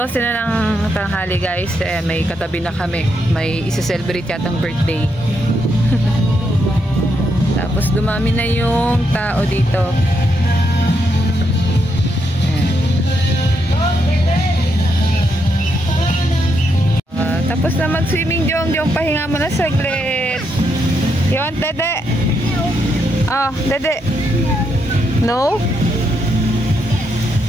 na ng tanghali guys. May katabi na kami. May isa-celebrate yatang birthday. Tapos dumami na yung tao dito. Tapos na mag-swimming, Jong. Pahinga mo na saglit. You want Dede? Oh, Dede. No?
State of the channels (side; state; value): both; normal; correlation 0.79